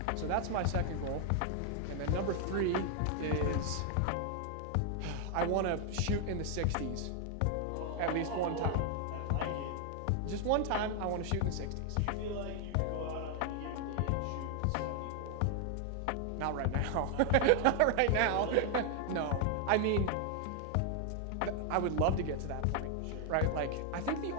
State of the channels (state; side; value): different; both; correlation 0.00